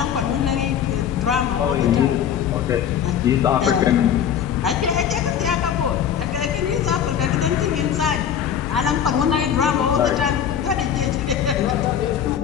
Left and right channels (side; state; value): right; quieter; 8.9 dB